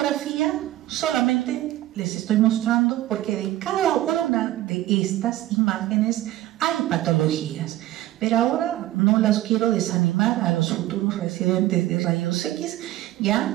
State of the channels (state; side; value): quieter; left; 15.2 dB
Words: solamente les estoy mostrando porque de cada una de estas imágenes hay patologías, pero ahora no las quiero desanimar a los futuros residentes de rayos X, ya